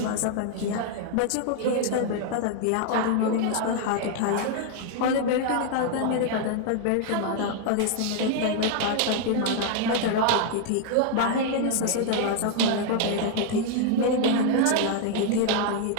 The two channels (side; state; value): both; different; correlation 0.00